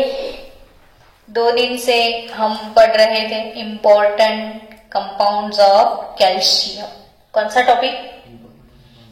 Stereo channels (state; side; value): identical; both; correlation 1.00